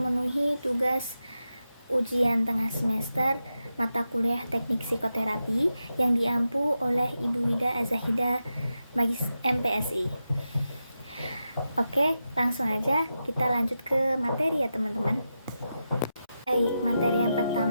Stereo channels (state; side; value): inverted; both; correlation -0.89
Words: tugas ujian tengah semester mata kuliah teknik psikoterapi yang diampu oleh Ibu Wida Azahida Magis MPSI. Oke, langsung aja kita lanjut ke materi ya teman-teman. Baik, materi yang